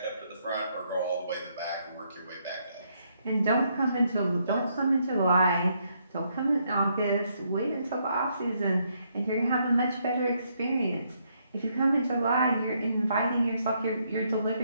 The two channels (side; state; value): both; inverted; correlation -0.74